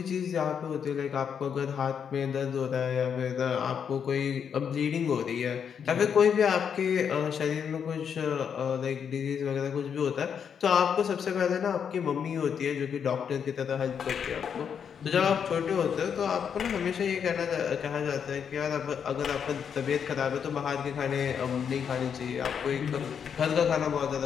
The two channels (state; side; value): quieter; right; 7.4 dB